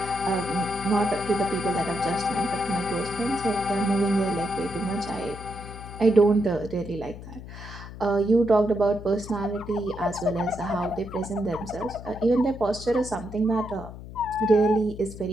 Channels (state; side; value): noise; left; hum, 13 dB below the sound